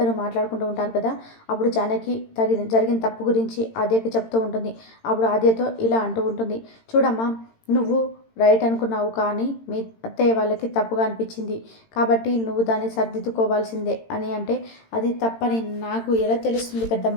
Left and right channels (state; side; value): late; right; 18 ms